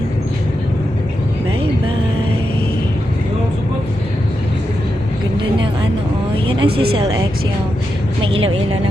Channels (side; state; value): both; normal; correlation 0.87